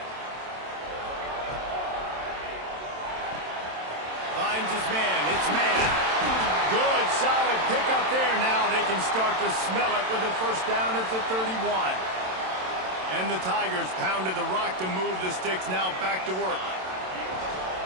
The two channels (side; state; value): left; late; 27 ms